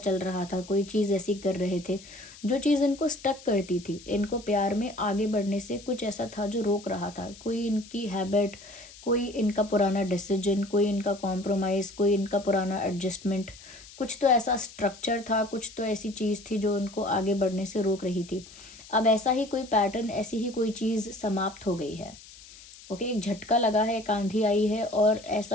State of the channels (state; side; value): noise; left; hiss, 19 dB below the sound